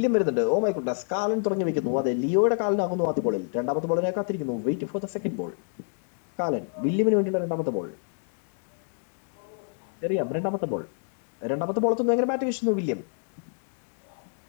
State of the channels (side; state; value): right; silent; 60 dB below the other